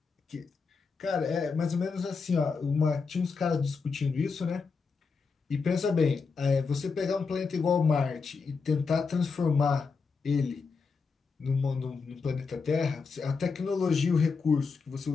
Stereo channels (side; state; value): right; quieter; 4.9 dB